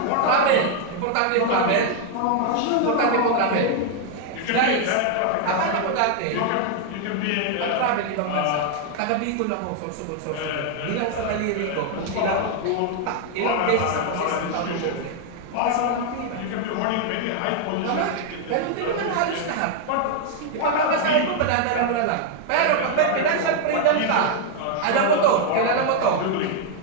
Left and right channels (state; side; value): different; both; correlation 0.00